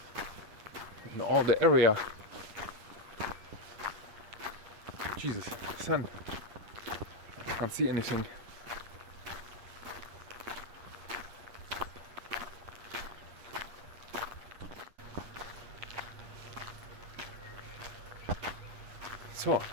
in all the area. Jesus, sun. I can't see anything. So,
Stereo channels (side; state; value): left; late; 9.1 ms